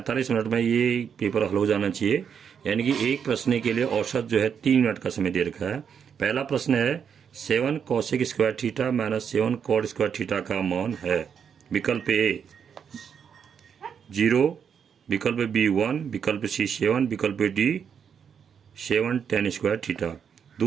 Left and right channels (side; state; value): left; quieter; 7.4 dB